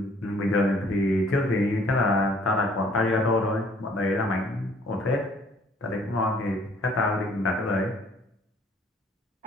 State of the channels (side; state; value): both; normal; correlation 0.59